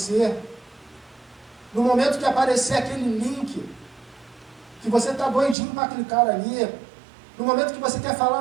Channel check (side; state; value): left; drops out; at 5.6 s